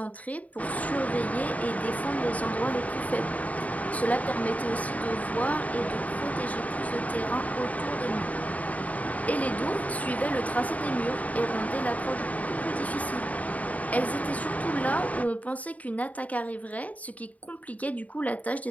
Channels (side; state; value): right; late; 0.071 ms